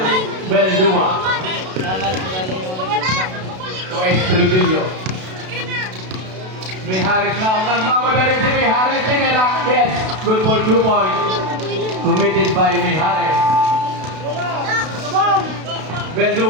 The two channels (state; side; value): late; left; 32 ms